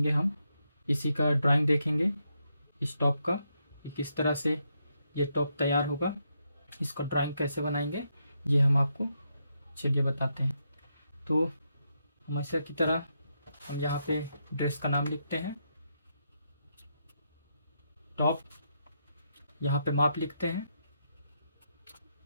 हम, इसी का ड्राइंग देखेंगे इस टॉप का, किस तरह से ये टॉप तैयार होगा, इसका ड्राइंग कैसे बनाएंगे ये हम आपको चलिए बताते हैं। तो हमेशा की तरह हम यहाँ पे ड्रेस का नाम लिखते हैं, टॉप, यहाँ पे माप लिखते हैं।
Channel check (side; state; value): both; inverted; correlation -0.80